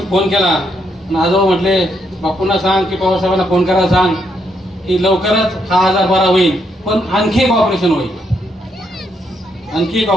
फोन केला आणि आजोबा म्हटले बापूंना सांग की पवार साहेबांना फोन करायला सांग की लवकरच हा आजार बरा होईल, पण आणखी एक ऑपरेशन होईल.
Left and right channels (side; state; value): both; normal; correlation 0.76